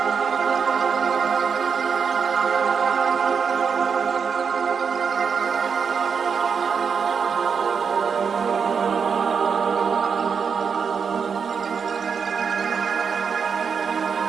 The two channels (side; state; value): left; quieter; 6.2 dB